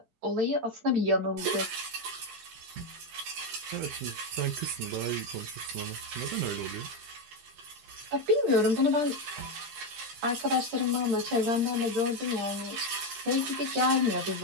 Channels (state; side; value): late; left; 13 ms